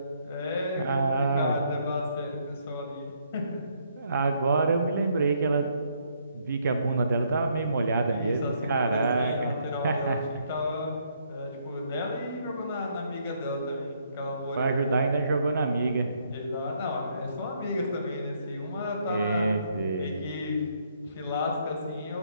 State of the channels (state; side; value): inverted; both; correlation -0.70